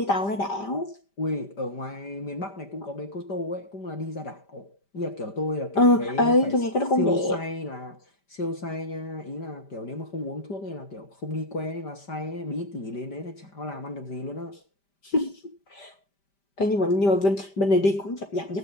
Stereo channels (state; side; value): late; right; 5.1 ms